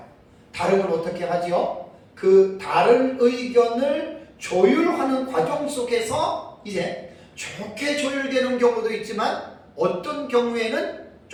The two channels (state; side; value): identical; both; correlation 1.00